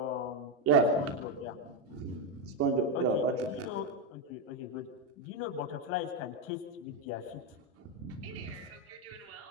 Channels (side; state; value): both; normal; correlation 0.07